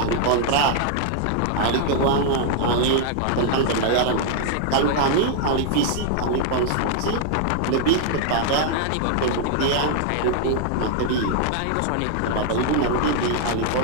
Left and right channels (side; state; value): both; different; correlation 0.00